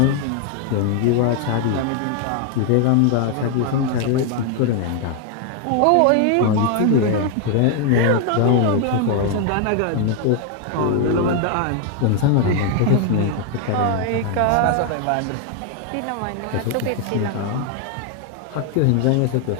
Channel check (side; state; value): both; different; correlation 0.00